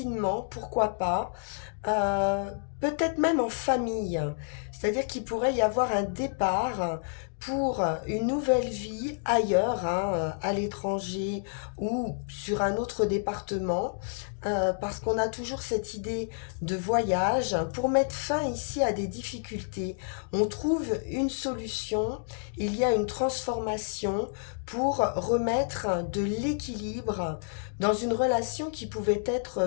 pourquoi pas, euh, peut-être même en famille. C'est-à-dire qu'il pourrait y avoir un départ pour une nouvelle vie ailleurs, hein, à l'étranger ou sur un autre département, parce qu'on a toujours cette idée de voyage. Pour mettre fin ici à des difficultés, on trouve une solution, il y a une transformation pour remettre de l'équilibre dans une relation qui pouvait être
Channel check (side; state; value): right; silent; digital silence